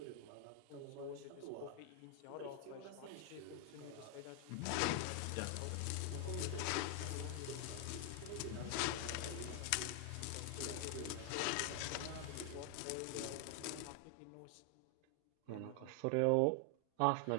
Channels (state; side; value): different; both; correlation 0.00